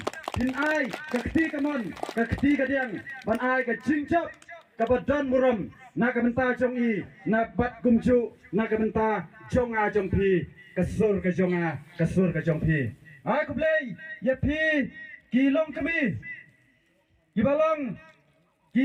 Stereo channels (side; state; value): both; identical; correlation 1.00